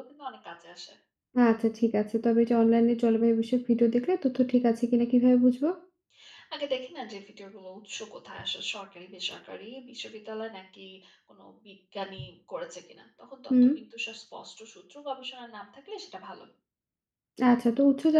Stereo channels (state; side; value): identical; both; correlation 1.00